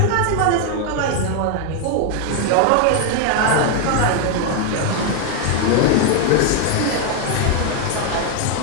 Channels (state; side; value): different; both; correlation 0.00